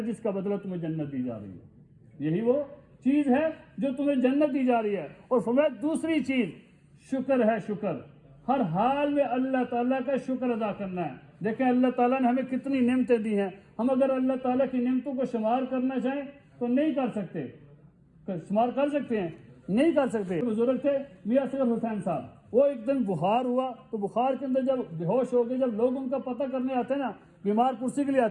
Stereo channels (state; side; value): identical; both; correlation 1.00